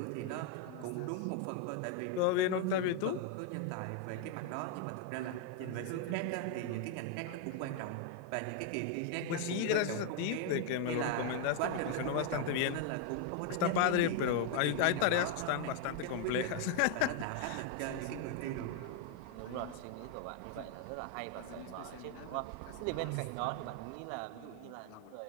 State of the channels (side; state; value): both; different; correlation 0.01